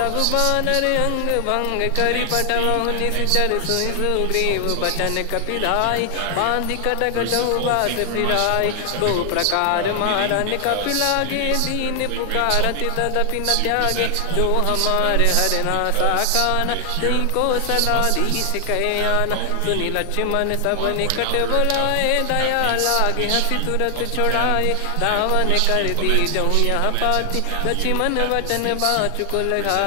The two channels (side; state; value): both; different; correlation 0.00